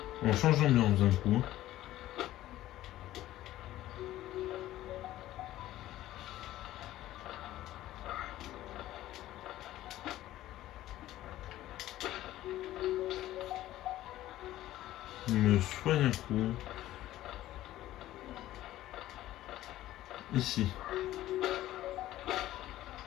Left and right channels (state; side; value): quieter; right; 14.6 dB